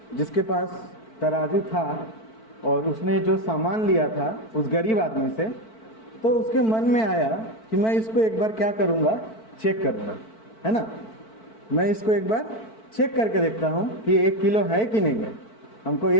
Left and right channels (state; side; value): late; right; 4.5 ms